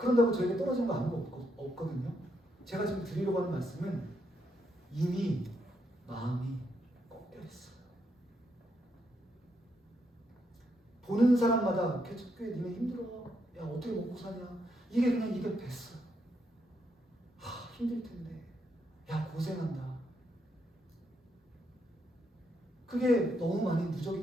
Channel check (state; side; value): normal; both; correlation 0.78